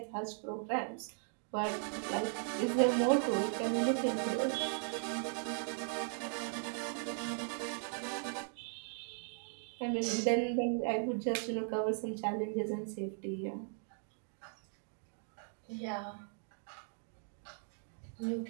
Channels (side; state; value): left; silent; 52 dB below the other